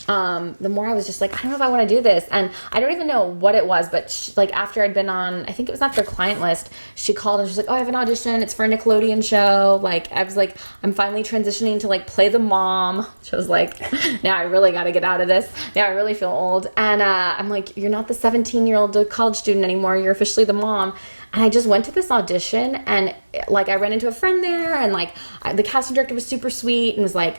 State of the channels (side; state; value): both; inverted; correlation -1.00